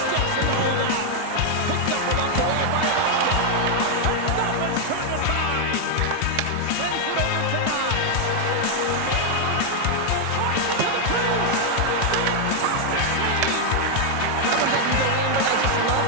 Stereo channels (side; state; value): both; different; correlation 0.00